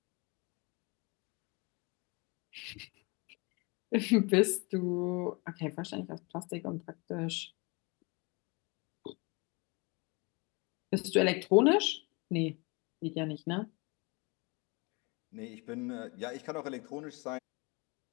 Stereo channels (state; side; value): quieter; right; 28.5 dB